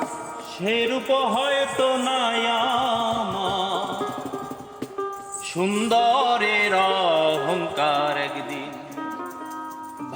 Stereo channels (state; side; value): identical; both; correlation 1.00